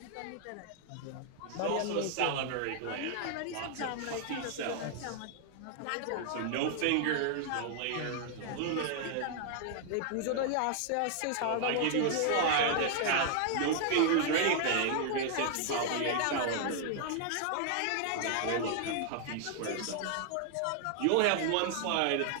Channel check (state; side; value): different; both; correlation 0.00